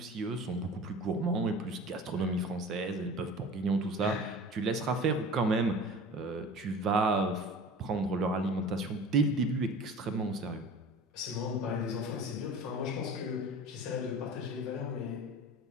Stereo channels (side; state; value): both; normal; correlation 0.39